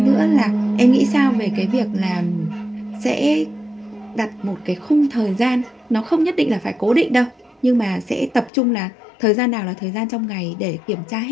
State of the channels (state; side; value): drops out; right; at 8.5 s